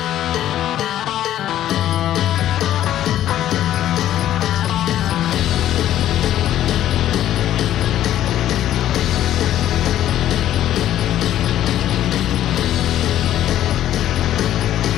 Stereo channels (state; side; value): quieter; right; 12.2 dB